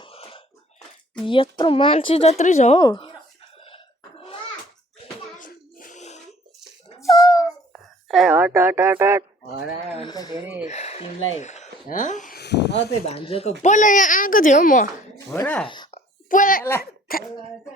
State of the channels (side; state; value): both; normal; correlation 0.54